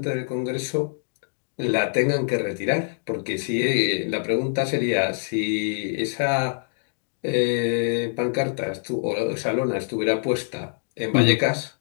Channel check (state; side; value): silent; right; digital silence